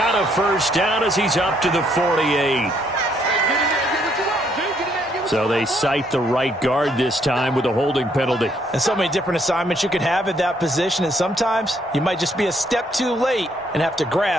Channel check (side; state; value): both; normal; correlation 0.70